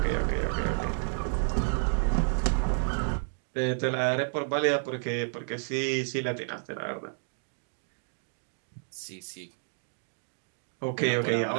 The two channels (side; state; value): left; silent; digital silence